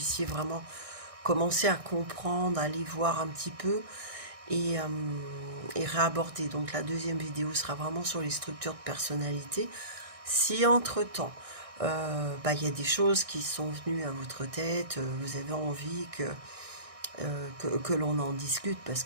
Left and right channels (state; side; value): late; left; 1.6 ms